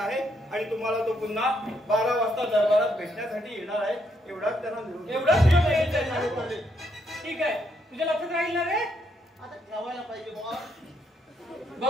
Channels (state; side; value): normal; both; correlation 0.75